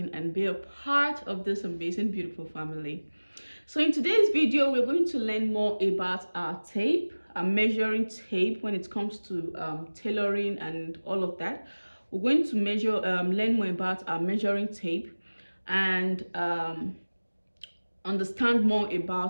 and be a part of this amazing, beautiful family. So in today's video, we're going to learn more about our tape, our measuring tape when it comes to tailoring and all of that. We're going to learn more about our measuring tape and understand more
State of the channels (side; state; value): both; inverted; correlation -1.00